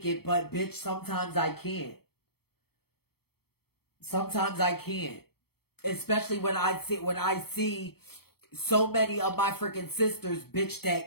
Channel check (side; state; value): right; late; 0.96 ms